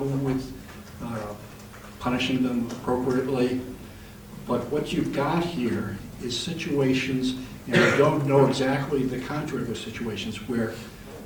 with punishing them appropriately. But what you've got here is situations, and I don't know exactly the contour of the situations, where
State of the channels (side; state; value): both; identical; correlation 1.00